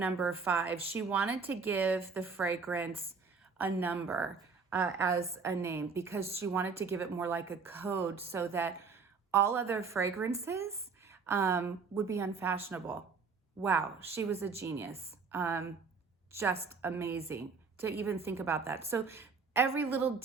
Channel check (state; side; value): quieter; left; 5.0 dB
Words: 5, she wanted to give the fragrance a number as a name because she wanted to give it more like a code so that all other fragrances would be unfashionable. Wow, she was a genius. Just amazing to even think about that. So every little